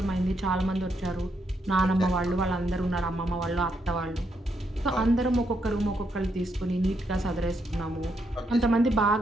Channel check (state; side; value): normal; both; correlation 0.78